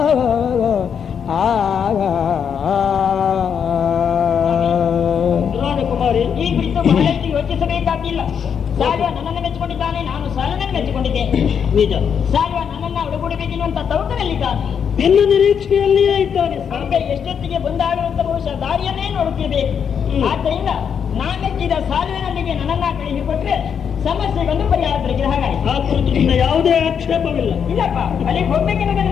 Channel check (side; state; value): right; quieter; 7.4 dB